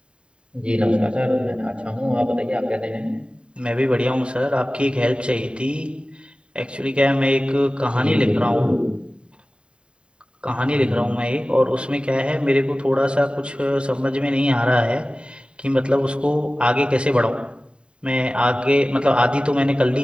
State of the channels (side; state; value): left; late; 0.053 ms